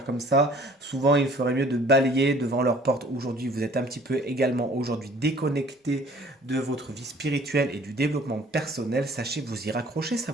comme ça. Souvent, il ferait mieux de balayer devant leur porte. Aujourd'hui, vous êtes un petit peu également aujourd'hui déconnecté de votre vie spirituelle et du développement personnel. Sachez vous y raccrocher, ça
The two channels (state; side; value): normal; both; correlation 0.54